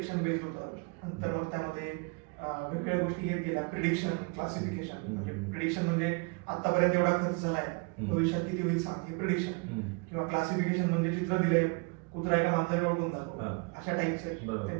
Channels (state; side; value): quieter; left; 31.9 dB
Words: बेस्ड होतं. नंतर मग त्यामध्ये वेगवेगळ्या गोष्टी येत गेल्या, प्रिडिक्शन, क्लासिफिकेशन. म्हणजे प्रिडिक्शन म्हणजे आतापर्यंत एवढा खर्च झालाय, भविष्यात किती होईल सांग, हे प्रिडिक्शन. किंवा क्लासिफिकेशन म्हणजे चित्र दिलंय, कुत्रा एका माणसाला ओळखून जातो, अशा टाईपचे